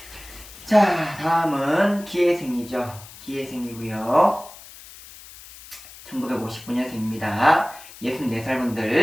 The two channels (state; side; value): noise; left; hiss, 18 dB below the sound